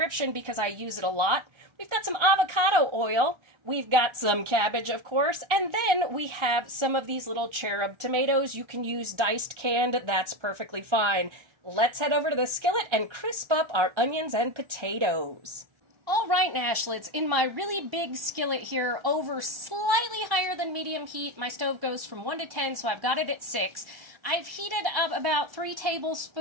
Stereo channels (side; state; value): left; late; 1.3 ms